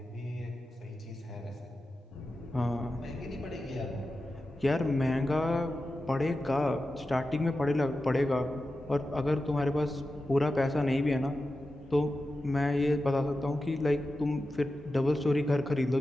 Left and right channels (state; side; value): normal; both; correlation 0.92